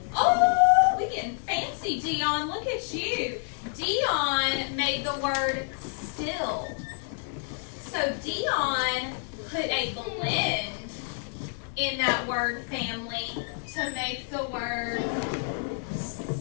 Oh, we're getting fancy, Dion. Look at you. Dion made the word still. So Dion put a blend in that word family to make the word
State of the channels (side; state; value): right; silent; 59 dB below the other